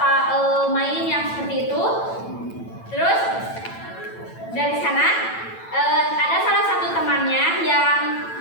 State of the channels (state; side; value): late; right; 9.0 ms